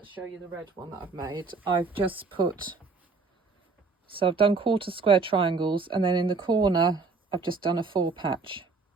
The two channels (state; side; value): quieter; left; 4.3 dB